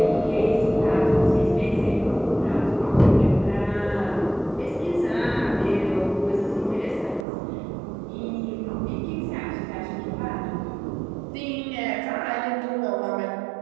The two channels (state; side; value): drops out; left; at 7.2 s